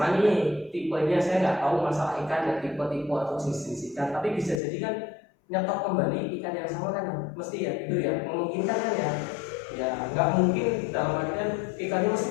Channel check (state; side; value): drops out; right; at 4.6 s